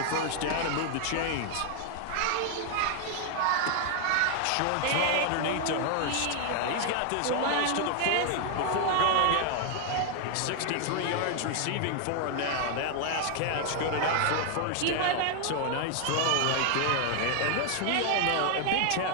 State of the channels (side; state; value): both; different; correlation 0.00